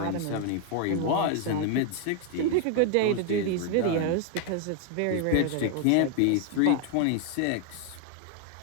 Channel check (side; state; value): both; different; correlation 0.01